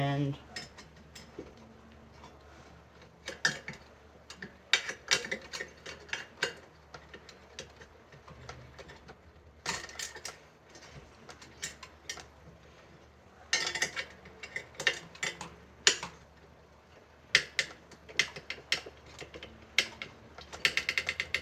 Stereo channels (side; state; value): both; identical; correlation 1.00